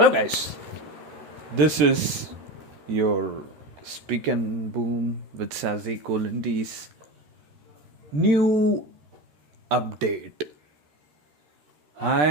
guys. This is your Speak and Boom with Sazi Kolindi's new update. I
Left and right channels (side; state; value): left; late; 13 ms